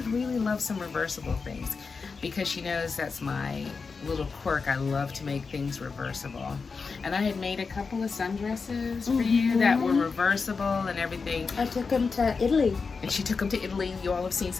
really love some reversible things," because she knows that's my little quirk. I love to make things reversible. And I had made a couple of sundresses for you that were reversible and everything. I took them to Italy. And she took them to Italy. You all have seen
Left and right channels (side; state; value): right; quieter; 4.8 dB